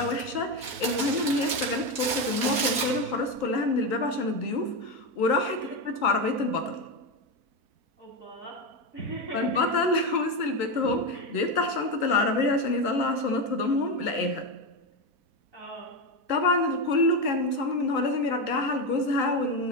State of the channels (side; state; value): left; late; 4.2 ms